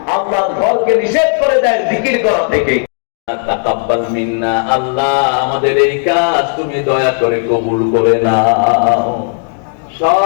আল্লাহর ঘরকে নিষেধ করে দেয় জিকির করা থেকে। তাকাব্বাল মিন্না, আল্লাহ আমাদের এই কাজ তুমি দয়া করে কবুল করে নাও।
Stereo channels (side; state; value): right; silent; 58 dB below the other